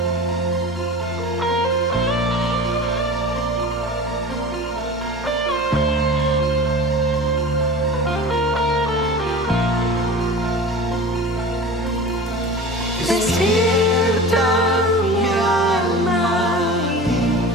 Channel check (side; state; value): both; normal; correlation 0.36